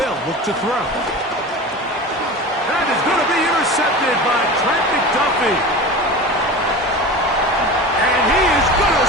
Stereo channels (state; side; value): normal; both; correlation 0.32